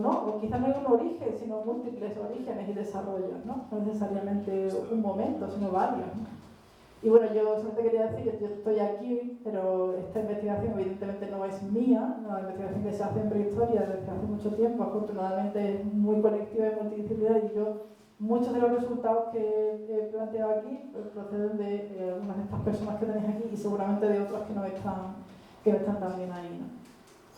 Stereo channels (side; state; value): both; identical; correlation 1.00